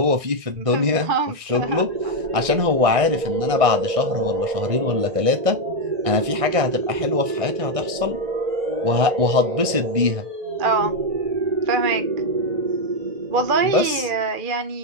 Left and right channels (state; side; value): late; left; 1.6 ms